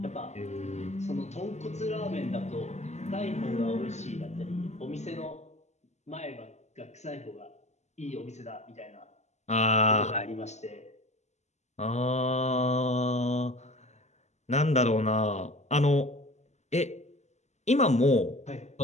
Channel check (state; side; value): late; right; 0.33 ms